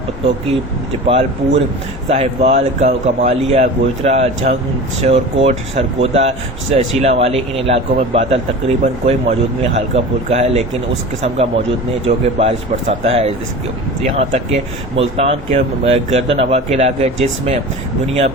پتوکی، جپال پور، ساہیوال، کمالیہ، گوجرا، جھنگ، شورکوٹ، سرگودا، شیلا والی، ان علاقوں میں بادل تقریباً کوئی موجود نہیں، ہلکا پھلکا ہے لیکن اس قسم کا موجود نہیں جو کہ بارش برساتا ہے۔ یہاں تک کہ ملتان کے گردن ہوا کے علاقے، جس میں بنیا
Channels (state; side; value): normal; both; correlation 0.34